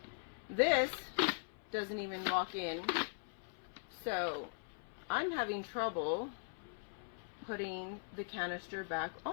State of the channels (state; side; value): silent; right; 51 dB below the other